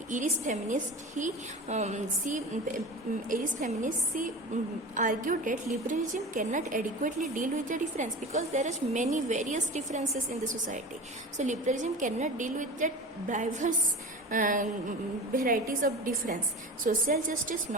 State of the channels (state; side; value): normal; both; correlation 0.33